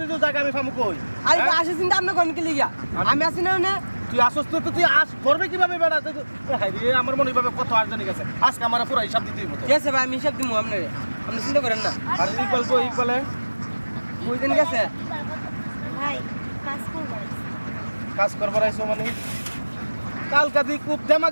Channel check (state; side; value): inverted; both; correlation -1.00